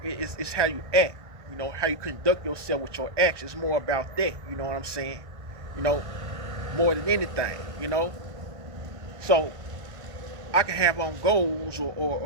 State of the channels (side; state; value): left; late; 1.6 ms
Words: It's how you act. How you conduct yourself with your actions. It's more about that. You know what I'm saying? More than anything. So I can have on golds